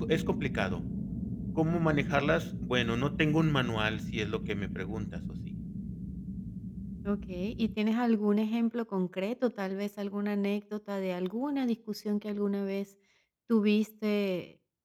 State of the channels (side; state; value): both; identical; correlation 1.00